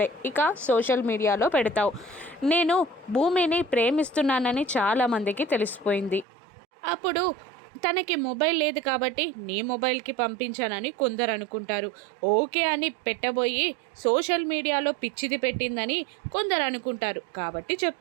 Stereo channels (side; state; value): left; drops out; at 6.2 s